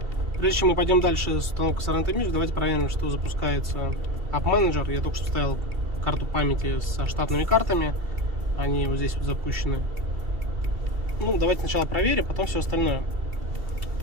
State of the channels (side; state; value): left; late; 2.7 ms